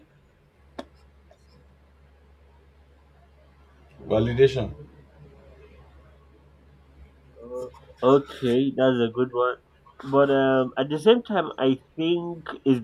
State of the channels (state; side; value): identical; both; correlation 1.00